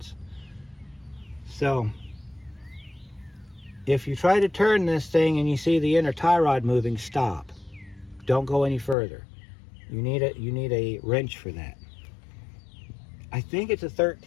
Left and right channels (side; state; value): right; drops out; at 9.0 s